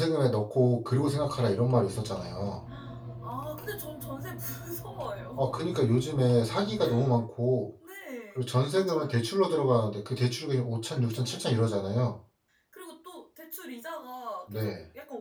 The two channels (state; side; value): identical; both; correlation 1.00